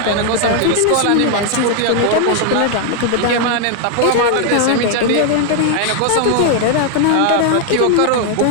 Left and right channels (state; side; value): different; both; correlation 0.00